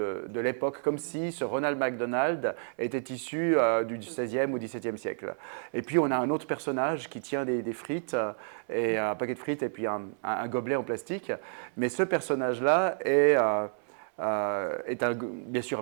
l'époque, comme si ce Ronald McDonald était issu du XVIe ou XVIIe siècle. Et puis on a un autre personnage qui tient des frites, et un paquet de frites et puis un gobelet en plastique. Mais ce personnage-là est bien sûr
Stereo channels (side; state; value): left; silent; 58 dB below the other